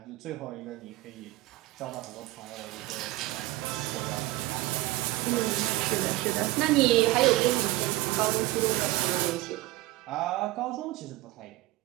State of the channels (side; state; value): left; quieter; 17.8 dB